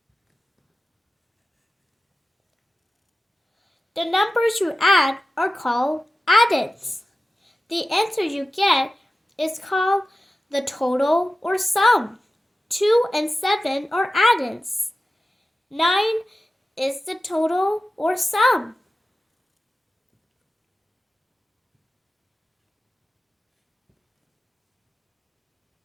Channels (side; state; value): both; normal; correlation 0.94